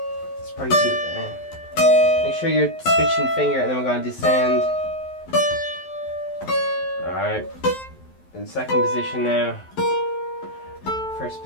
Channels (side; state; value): right; late; 11 ms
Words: probably too... make sure you're switching finger, and then we're going to descend. Alright. In second position now. First